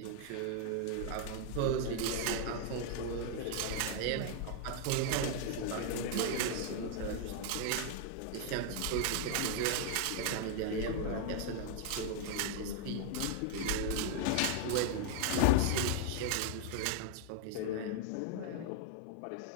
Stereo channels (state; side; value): different; both; correlation 0.00